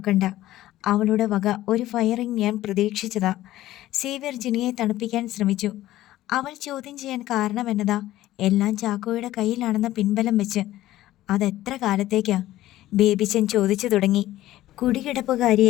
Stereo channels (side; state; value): right; quieter; 15.0 dB